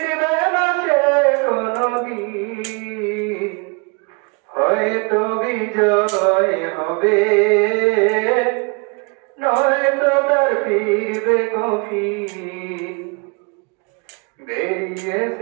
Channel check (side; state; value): left; quieter; 32.7 dB